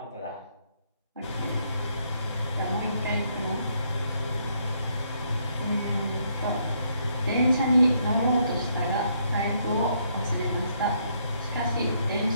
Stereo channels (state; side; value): inverted; both; correlation -0.72